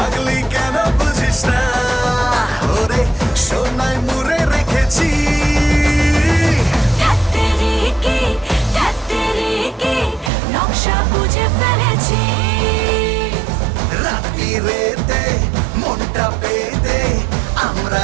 কেন বুঝিস না, ওরে সোনায় মুড়ে রেখেছি। ধ্যাত্তেরিকি নকশা বুঝে ফেলেছি। রাত্রিরেতে মনটা পেতে আমরা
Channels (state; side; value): drops out; left; at 10.3 s